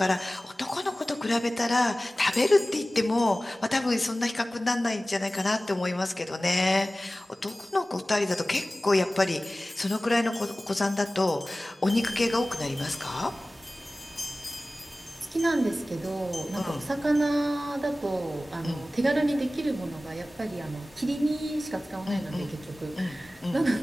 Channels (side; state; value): both; normal; correlation 0.97